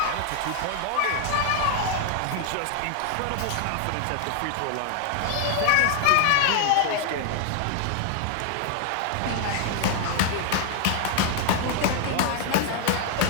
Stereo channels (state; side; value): different; both; correlation 0.00